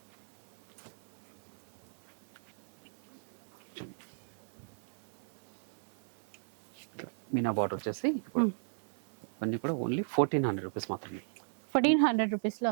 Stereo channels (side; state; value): left; silent; 54 dB below the other